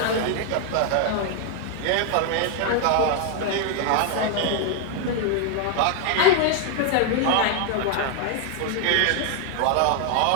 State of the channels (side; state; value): both; different; correlation 0.00